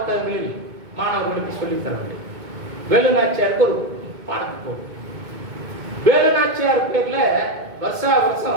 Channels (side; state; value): left; late; 2.2 ms